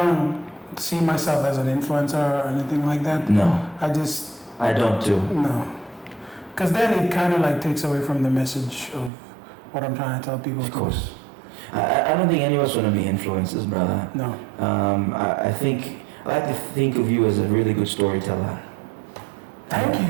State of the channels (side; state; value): left; drops out; at 9.1 s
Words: see myself as an influencer or anything like that. No, I don't too. No. Because then it kind of like takes away from the message of what I'm trying to tell people. Of course. I don't think any of us want to be influencers, brother. No. I like to think of you as a really good storyteller. Thank